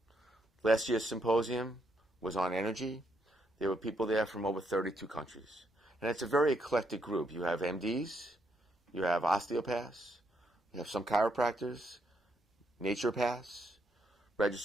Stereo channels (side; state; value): both; normal; correlation 0.76